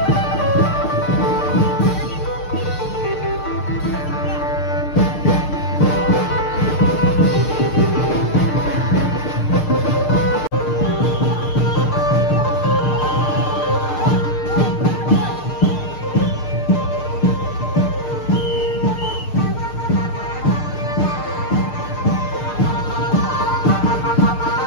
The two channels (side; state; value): right; late; 6.6 ms